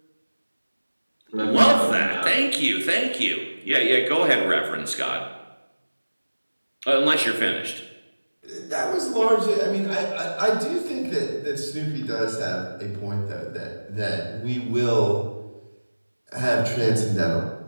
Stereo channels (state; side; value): inverted; both; correlation -1.00